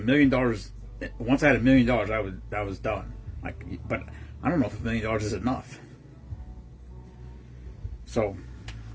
million, once I had $1 million, I was done. But I don't know if $1 million is enough. So,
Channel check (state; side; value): identical; both; correlation 1.00